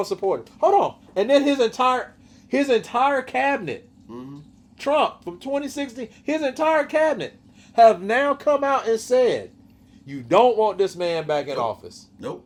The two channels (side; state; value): both; identical; correlation 1.00